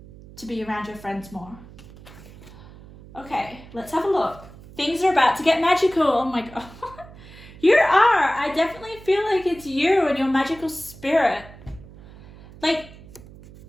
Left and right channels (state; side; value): noise; right; hum, 19 dB below the sound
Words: to be around your friends more. Okay, let's have a look. Things are about to get magical. Oh my God. You are. I definitely feel like it's you and your magical spirit. Like,